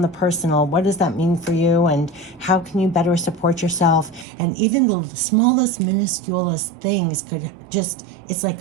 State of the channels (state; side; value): drops out; left; at 4.2 s